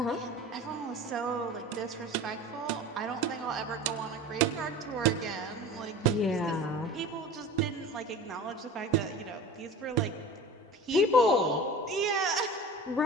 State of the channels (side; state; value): both; normal; correlation 0.37